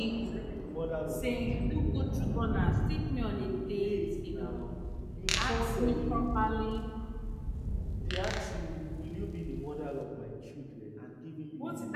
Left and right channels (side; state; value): both; identical; correlation 1.00